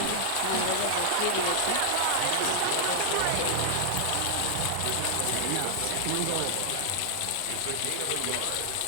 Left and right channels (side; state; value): both; different; correlation 0.00